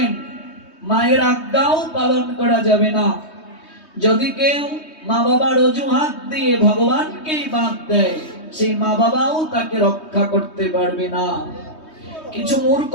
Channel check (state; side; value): late; right; 3.2 ms